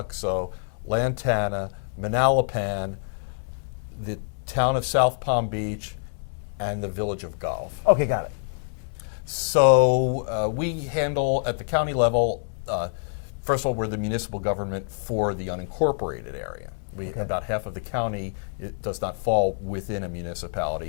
Lantana, Manalapan, the town of South Palm Beach, and the village of Gulf. Okay, got it. So we handle, at the county level, first of all, we're the municipal government for the unincorporated area. About half of the county, it does not fall within a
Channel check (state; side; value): silent; right; digital silence